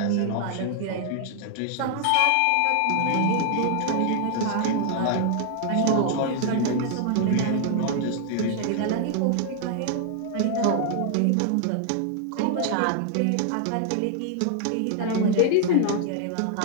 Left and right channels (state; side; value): different; both; correlation 0.00